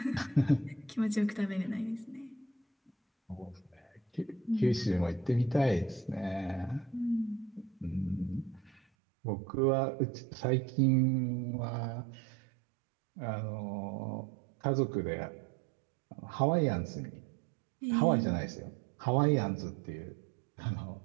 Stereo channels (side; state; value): left; drops out; at 8.8 s